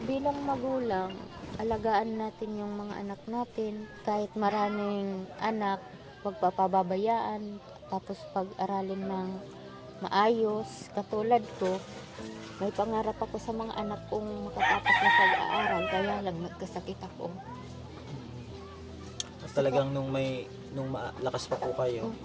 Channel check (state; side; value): identical; both; correlation 1.00